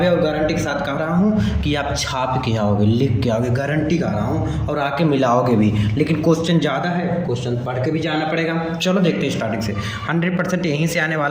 और गारंटी के साथ कह रहा हूँ कि आप छाप के आओगे, लिख के आओगे, गारंटी कर रहा हूँ, और आके मिलाओगे भी। लेकिन क्वेश्चन ज़्यादा है, क्वेश्चन पढ़ के भी जाना पड़ेगा। चलो देखते हैं स्टार्टिंग से। 100% यहीं से आने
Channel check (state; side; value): identical; both; correlation 1.00